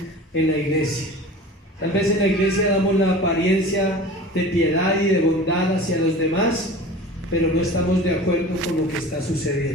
en la iglesia. Tal vez en la iglesia damos la apariencia de piedad y de bondad hacia los demás, pero no estamos de acuerdo con lo que está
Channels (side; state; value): both; normal; correlation 0.38